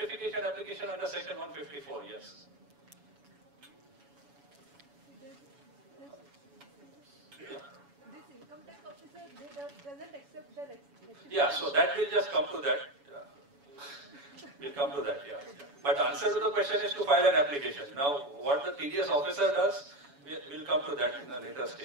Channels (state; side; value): late; left; 7.1 ms